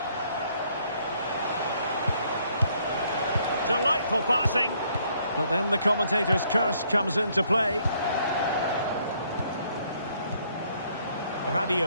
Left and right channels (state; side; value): inverted; both; correlation -0.67